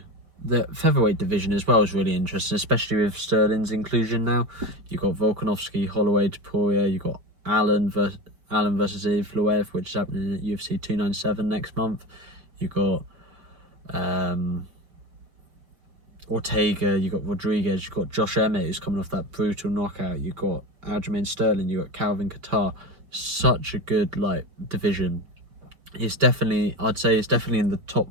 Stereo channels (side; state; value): left; late; 5.2 ms